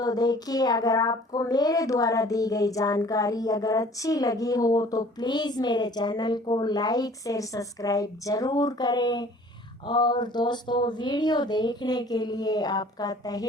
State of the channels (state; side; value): normal; both; correlation 0.51